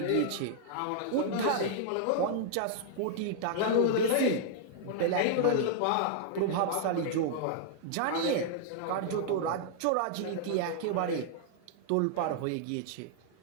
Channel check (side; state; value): both; different; correlation -0.01